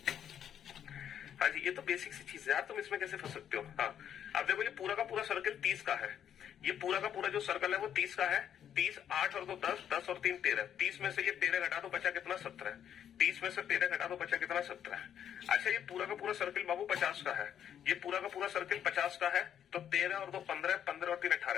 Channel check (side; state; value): right; quieter; 9.4 dB